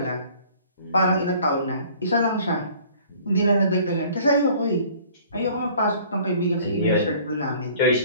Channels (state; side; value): inverted; both; correlation -0.52